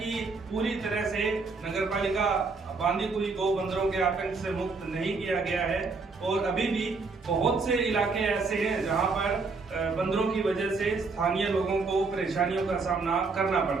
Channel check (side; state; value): left; quieter; 4.2 dB